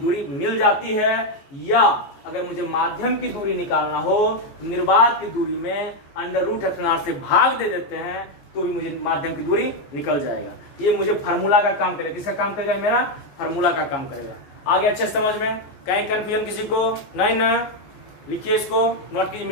मिल जाती है। या अगर मुझे माध्यम की दूरी निकालना हो तो निर्वात की दूरी में अंडर रूट एप्सिलॉन R से भाग दे देते हैं तो भी मुझे माध्यम की दूरी निकल जाएगा। ये मुझे फार्मूला का काम करेगा, किसका काम करेगा, मेरा फार्मूला का काम करेगा। आगे अच्छे समझ में, कहीं कंफ्यूजन किसी को नहीं ना, लिखिए इसको, नोट कीजिए,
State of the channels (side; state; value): right; late; 14 ms